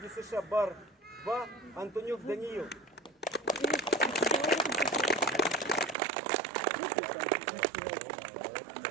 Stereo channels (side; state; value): left; drops out; at 6.0 s